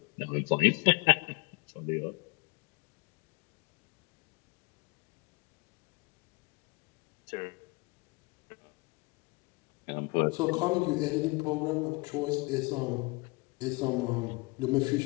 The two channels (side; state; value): right; quieter; 27.0 dB